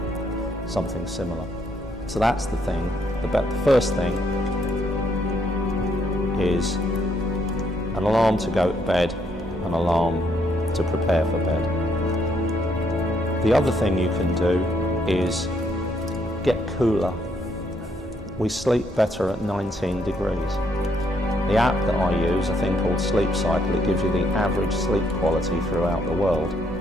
something similar. So that's the thing. The first thing is an alarm to go to bed, an alarm to prepare for bed. The other thing you can do is get cooler. We sleep better at 19 degrees. The app that I use, a thing called Sleep Cycle, it gives you the average sleep quality throughout the world.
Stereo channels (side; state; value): both; normal; correlation 0.72